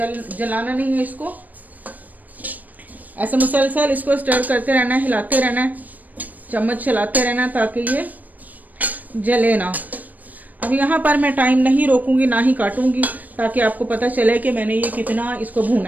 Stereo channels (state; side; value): late; left; 0.081 ms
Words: जलाना नहीं है इसको। ऐसे मुसलसल इसको स्टर करते रहना है, हिलाते रहना है, चम्मच चलाते रहना ताकि ये जले ना। अब यहाँ पर मैं टाइम नहीं रोकूंगी, ना ही काटूंगी, ताकि आपको पता चले कि मैंने ये कितना इसको